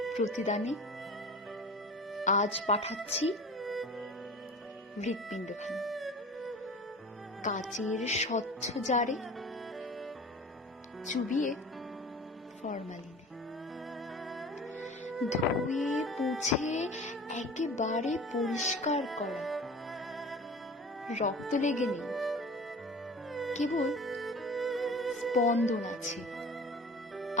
প্রতিদানে আজ পাঠাচ্ছি হৃৎপিণ্ডখানা কাচের স্বচ্ছ জারে, চুবিয়ে ফরমালিনে, ধুয়ে মুছে একেবারে পরিষ্কার করা। রক্ত লেগে নেই, কেবল স্পন্দন আছে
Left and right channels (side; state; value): both; normal; correlation 0.38